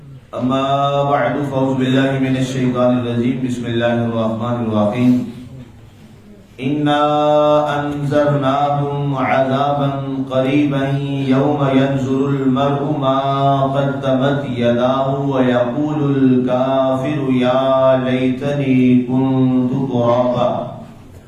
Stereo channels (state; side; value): identical; both; correlation 1.00